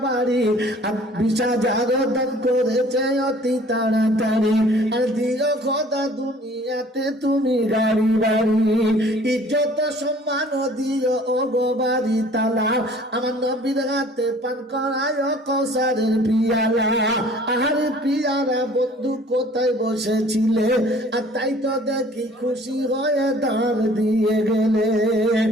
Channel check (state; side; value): normal; both; correlation 0.52